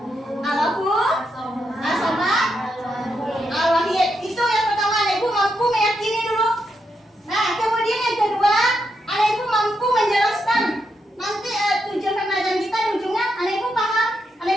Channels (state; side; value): normal; both; correlation 0.82